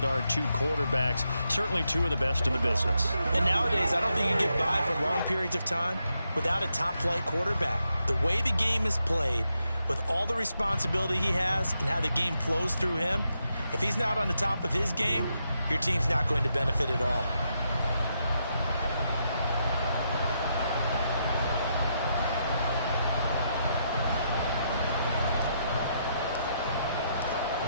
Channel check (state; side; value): inverted; both; correlation -0.81